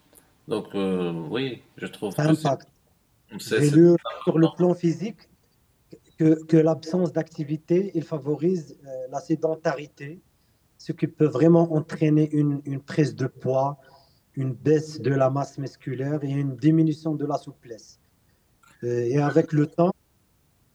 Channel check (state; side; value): identical; both; correlation 1.00